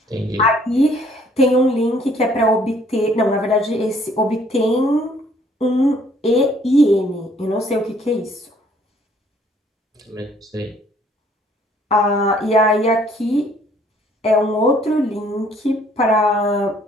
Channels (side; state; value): both; normal; correlation 0.61